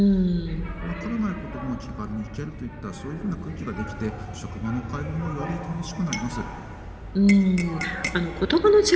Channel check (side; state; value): both; identical; correlation 1.00